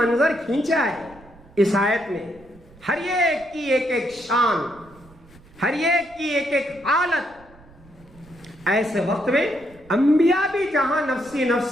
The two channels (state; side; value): noise; right; rumble, 25 dB below the sound